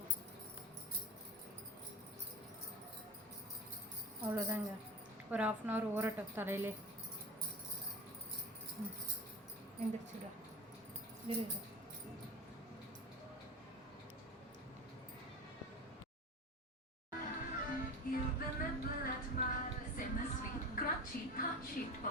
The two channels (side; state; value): both; normal; correlation 0.31